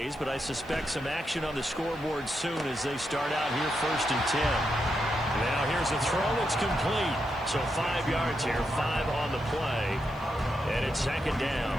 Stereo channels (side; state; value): right; noise; hiss, 28 dB below the sound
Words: but I suspect some action on the scoreboard soon as they start out here first and 10. Now here's a throw. It's complete. So 5 yards here, 5 on the play, and it's second down.